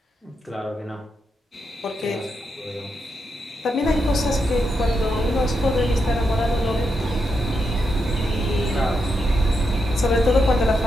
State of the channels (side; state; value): both; normal; correlation 0.84